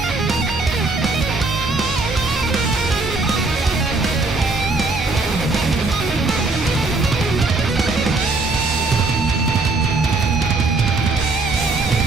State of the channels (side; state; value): left; quieter; 3.4 dB